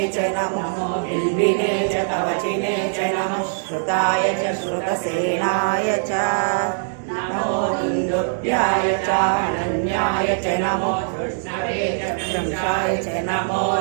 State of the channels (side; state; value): left; silent; 64 dB below the other